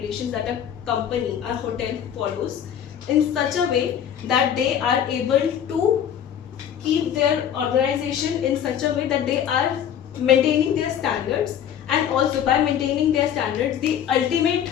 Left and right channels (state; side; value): quieter; right; 9.4 dB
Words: that a company, a hotel follows in such a way that they are able to keep their organization in such a way that they are maintaining their standards, and also by maintaining their standards, the ultimate